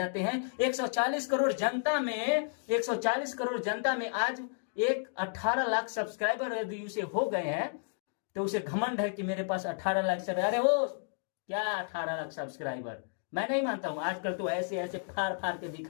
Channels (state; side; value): silent; right; digital silence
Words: हैं। 140 करोड़ जनता में आज एक 18 लाख सब्सक्राइबर यदि उसे हो गए हैं तो उसे घमंड है कि मेरे पास 18 लाख सब्सक्राइबर। अरे वो क्या 18 लाख सब्सक्राइबर? मैं नहीं मानता हूं। आजकल तो ऐसे ऐसे फाड़ फाड़ के